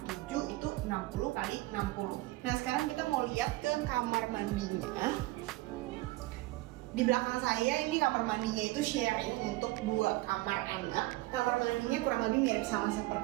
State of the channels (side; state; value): left; quieter; 20.0 dB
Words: 7 itu 60x60. Nah sekarang kita mau lihat ke kamar mandinya. Di belakang saya ini kamar mandinya itu sharing untuk 2 kamar anak. Kamar mandinya kurang lebih mirip sama